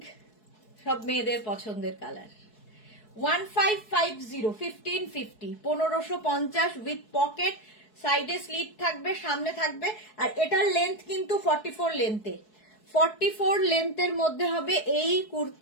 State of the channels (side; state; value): right; late; 4.7 ms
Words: সব মেয়েদের পছন্দের কালার। 1550, 1550, 1550 উইথ পকেট, সাইডে স্লিট থাকবে, সামনে থাকবে। আর এটার লেন্থ কিন্তু 44 লেন্থে, 44 লেন্থের মধ্যে হবে এই